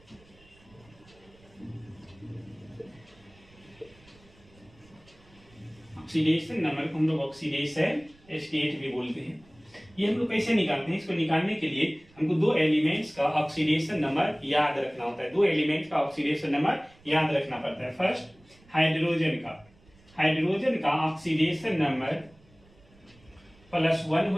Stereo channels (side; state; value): right; noise; rumble, 28 dB below the sound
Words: ऑक्सीडेशन नंबर को हम लोग ऑक्सीडेशन स्टेट भी बोलते हैं। ये हम लोग कैसे निकालते हैं? इसको निकालने के लिए हमको दो एलिमेंट्स का ऑक्सीडेशन नंबर याद रखना होता है। दो एलिमेंट्स का ऑक्सीडेशन नंबर याद रखना पड़ता है। फर्स्ट हाइड्रोजन का ऑक्सीडेशन नंबर +1